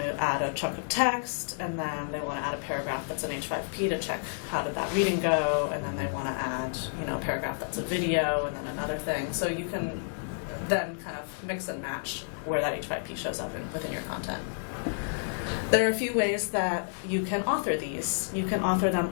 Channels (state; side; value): silent; right; digital silence